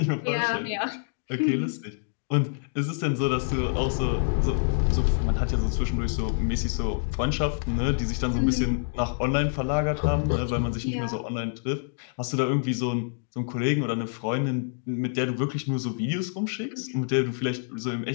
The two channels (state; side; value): silent; right; digital silence